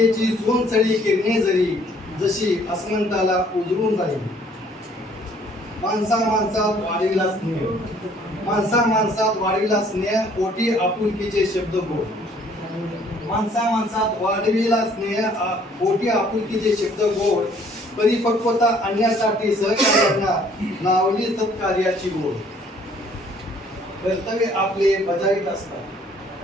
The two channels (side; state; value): both; normal; correlation 0.60